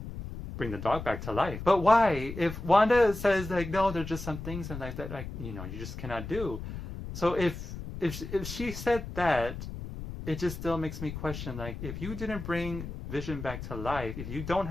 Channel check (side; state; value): left; noise; rumble, 9 dB below the sound